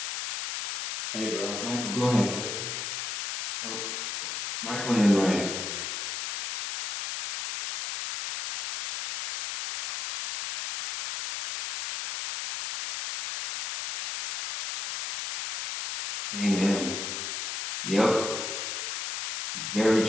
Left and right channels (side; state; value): left; noise; hiss, 4 dB below the sound